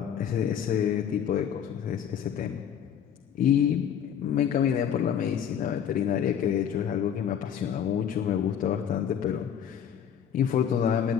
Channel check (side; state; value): right; quieter; 8.6 dB